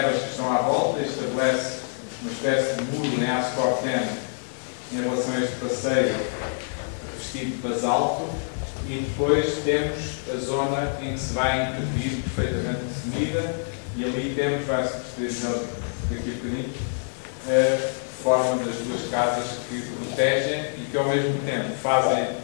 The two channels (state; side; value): silent; right; digital silence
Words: que estão à volta, estabelece uma espécie de muro em aço corten em relação a este passeio revestido de basalto, e depois temos a zona em que se vai intervir perfeitamente definida, e ali temos, vai-se perceber daqui a bocadinho, a forma das duas casas que protegem e que ao mesmo tempo